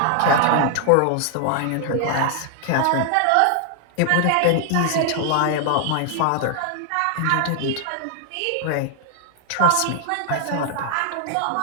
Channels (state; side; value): different; both; correlation 0.00